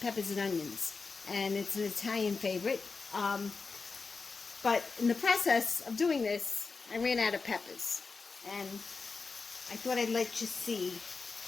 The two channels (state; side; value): quieter; right; 4.5 dB